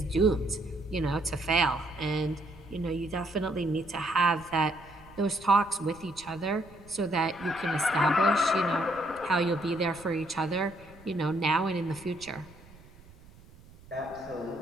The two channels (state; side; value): noise; right; rumble, 23 dB below the sound